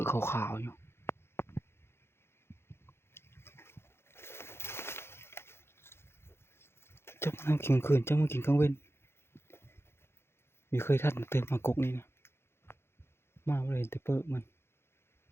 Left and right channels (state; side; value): late; right; 0.12 ms